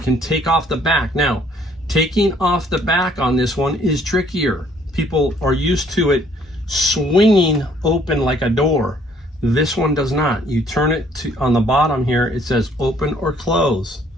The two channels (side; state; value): both; normal; correlation 0.62